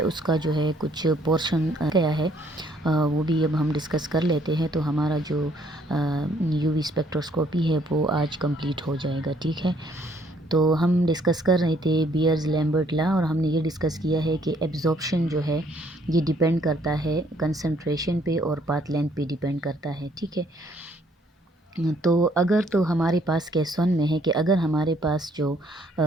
उसका जो है कुछ पोर्शन गया है, वो भी अब हम डिस्कस कर लेते हैं। तो हमारा जो यूवी स्पेक्ट्रोस्कोपी है वो आज कंप्लीट हो जाएगा। ठीक है, तो हम डिस्कस कर रहे थे बियर्स लैम्बर्ट लॉ, और हमने ये डिस्कस किया है कि एब्जॉर्प्शन जो है ये डिपेंड करता है कंसंट्रेशन पे और पाथ लेंथ पे डिपेंड करता है। ठीक है, तो अगर तो हमारे पास केस वन में है कि अगर हमारे पास जो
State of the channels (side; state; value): both; normal; correlation 0.65